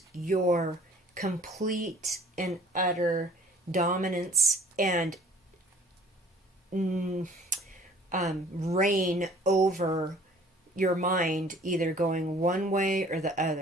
your complete and utter dominance and reign over your mind, either going one way or the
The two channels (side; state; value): both; normal; correlation 0.53